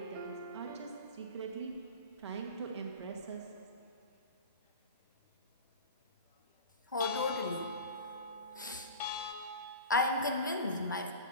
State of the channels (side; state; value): both; inverted; correlation -0.33